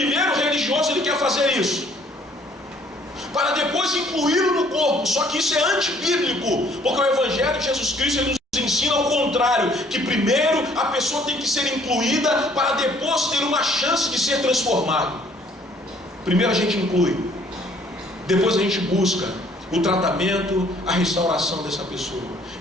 o religioso ele quer fazer isso, para depois incluí-lo no corpo. Só que isso é antibíblico, porque o Evangelho de Jesus Cristo ele nos ensina ao contrário, que primeiro a pessoa tem que ser incluída, para depois ter uma chance de ser transformado. Primeiro a gente inclui, depois a gente busca o tratamento, a restauração dessa pessoa.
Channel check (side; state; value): both; normal; correlation 0.60